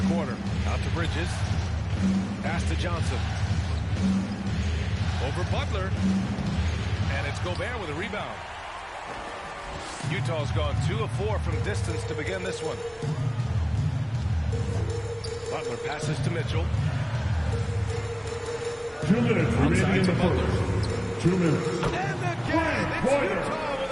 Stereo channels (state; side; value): identical; both; correlation 1.00